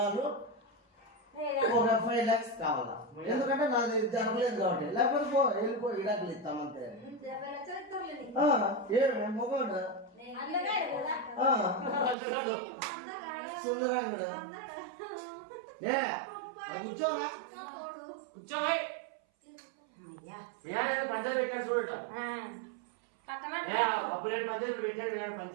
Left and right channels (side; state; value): left; drops out; at 12.2 s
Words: ఒక 5 lakhs కావాలా, ఎందుకంటే నాది జరగలేదు కాబట్టి. లేకపోతే వెళ్ళిపో ఇడాకులు ఇస్తామంతే. మొగోడు సుందరాంగుడు కూర్చోరా, కూర్చోబాయ్. పంచాయతీ పెట్టాడు చూడట, అప్పుడు నేను పంచాయతీ పెట్టాడు. నేను